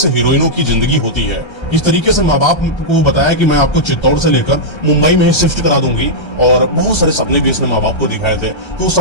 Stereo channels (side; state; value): right; late; 1.3 ms